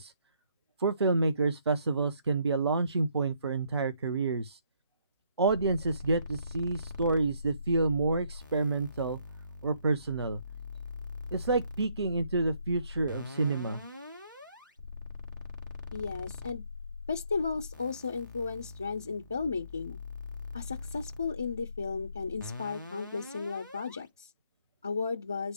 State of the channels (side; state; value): both; inverted; correlation -0.70